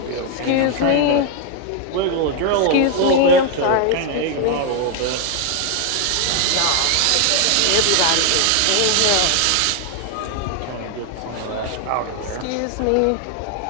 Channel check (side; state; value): both; different; correlation 0.01